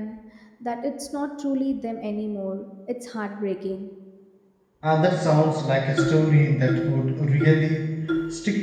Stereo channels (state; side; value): identical; both; correlation 1.00